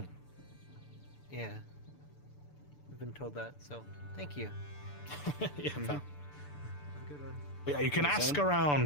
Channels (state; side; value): late; right; 6.9 ms